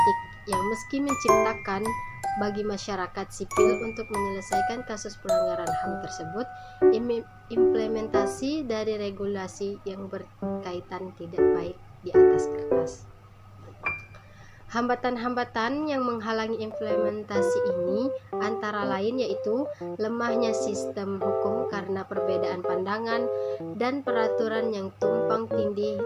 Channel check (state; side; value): identical; both; correlation 1.00